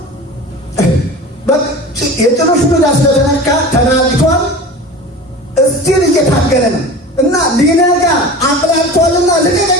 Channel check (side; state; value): both; normal; correlation 0.35